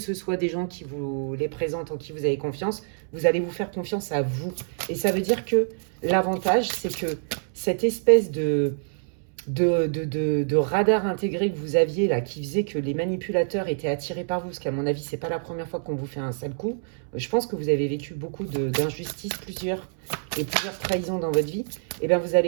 soit des gens qui vous les présentent, en qui vous avez confiance, vous allez vous faire confiance à vous. Et ça veut dire que l'avantage, c'est que cette espèce de radar intégré que vous aviez là, qui faisait que les manipulateurs étaient attirés par vous, parce qu'à mon avis, c'est pas la première fois qu'on vous fait un sale coup. Je pense que vous avez vécu beaucoup d'injustices, plusieurs trahisons dans votre vie. Et bien, vous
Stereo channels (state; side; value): silent; left; 61 dB below the other